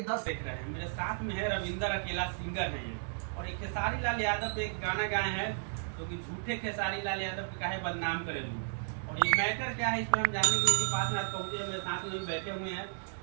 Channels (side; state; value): left; silent; digital silence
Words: 10 देख रहे हैं मेरे साथ में है रविंदर अकेला सिंगर है ये, और एक खेसारी लाल यादव पे एक गाना गाए हैं जो कि झूठे खेसारी लाल यादव पे काहे बदनाम करे लूं। और ये मैटर क्या है इस पर हम जानने के बाद में आज पहुंचे, मेरे साथ में बैठे हुए हैं